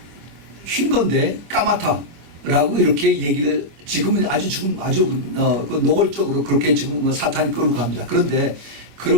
흰 건데 까맣다라고 이렇게 얘기를 지금은 아주 그 노골적으로 그렇게 지금 사탄이 끌고 갑니다. 그런데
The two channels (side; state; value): left; late; 26 ms